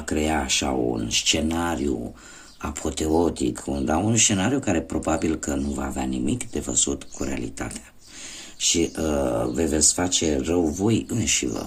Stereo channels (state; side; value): identical; both; correlation 1.00